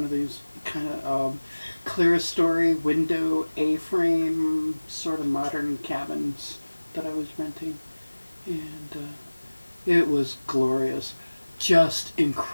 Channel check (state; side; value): inverted; both; correlation -1.00